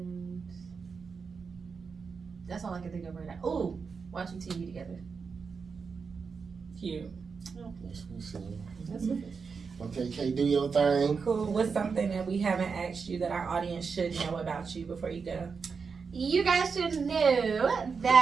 that's all I can think of right now. Oh, watching TV together. Cute. That's what's up. Okay, Kay, do your thing. Cool. What's something that we haven't asked you that our audience should know about you before you go? You guys should know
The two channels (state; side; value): quieter; left; 5.4 dB